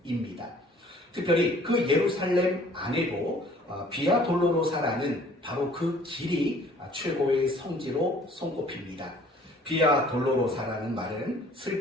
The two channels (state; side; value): normal; both; correlation 0.55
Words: 특별히 그 예루살렘 안에도 비아 돌로로사라는 바로 그 길이 최고의 성지로 손꼽힙니다. 비아 돌로로사라는 말은